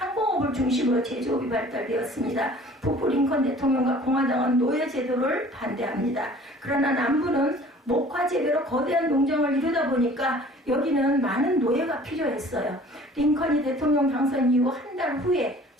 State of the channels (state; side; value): normal; both; correlation 0.49